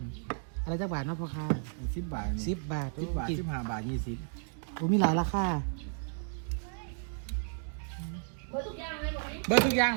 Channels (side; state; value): left; silent; 56 dB below the other